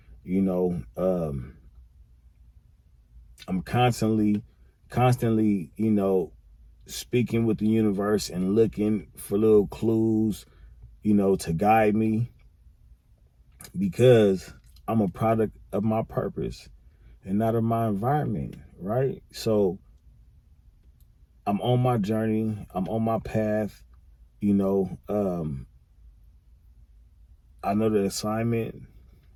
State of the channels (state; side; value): identical; both; correlation 1.00